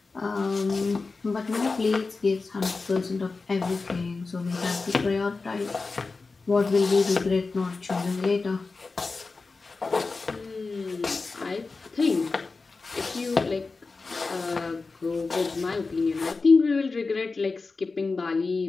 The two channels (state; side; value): quieter; right; 4.0 dB